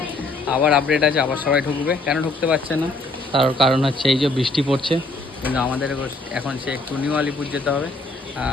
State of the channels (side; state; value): right; quieter; 3.0 dB